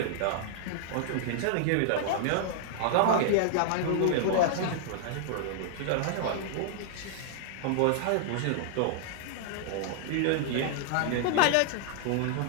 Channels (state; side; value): different; both; correlation -0.01